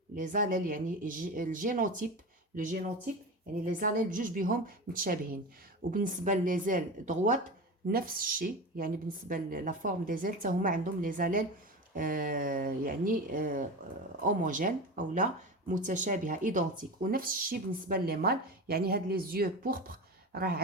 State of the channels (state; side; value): normal; both; correlation 0.27